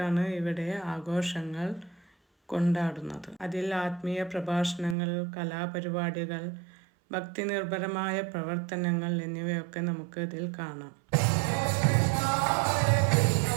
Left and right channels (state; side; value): drops out; left; at 5.0 s